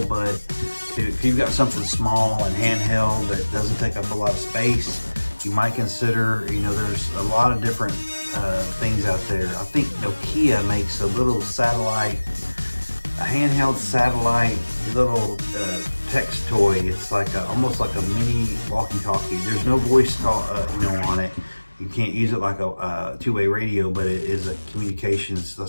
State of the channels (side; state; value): both; inverted; correlation -1.00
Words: but if you've got something small and handheld that doesn't take up a lot of space, you might consider, you know, there's a lot of different things out there. I think Nokia makes a little satellite, a handheld satellite little text toy. It's like almost like a mini walkie-talkie. There's no voice call, you know, on it. You can't use it like a two-way radio, but it is a communications.